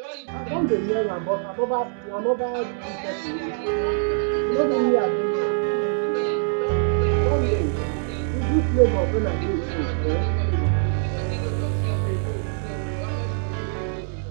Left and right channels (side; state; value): left; silent; 63 dB below the other